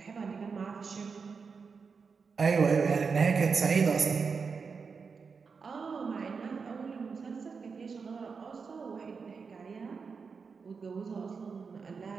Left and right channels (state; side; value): quieter; left; 5.3 dB